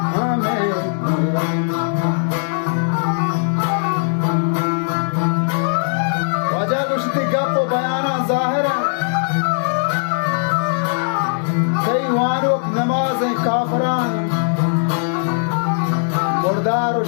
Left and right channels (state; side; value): silent; right; 67 dB below the other